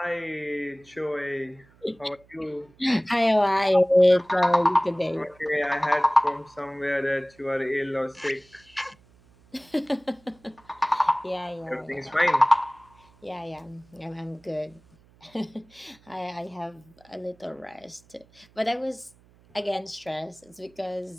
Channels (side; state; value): right; noise; hum, 29 dB below the sound